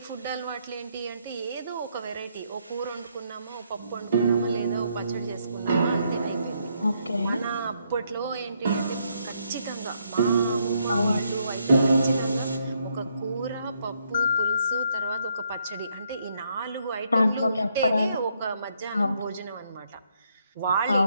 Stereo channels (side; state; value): both; inverted; correlation -0.74